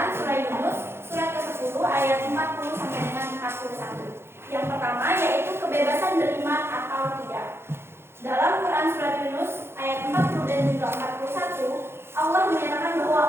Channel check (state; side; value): late; left; 0.12 ms